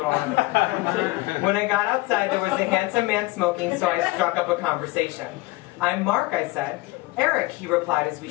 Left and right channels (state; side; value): quieter; right; 21.1 dB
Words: don't have that. When I got outside, there was a handsome man smoking, so I struck up a conversation. "I'm Mark," I said. "Eric," he replied as we